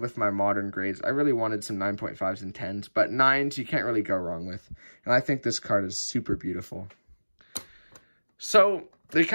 with my modern grades. I really wanted some 9.5s and 10s, but 9s you can't really go wrong with. And I think this card is super beautiful. So they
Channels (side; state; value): both; inverted; correlation -1.00